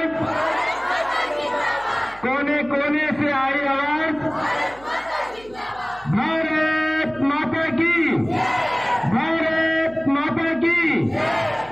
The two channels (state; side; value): noise; right; hum, 23 dB below the sound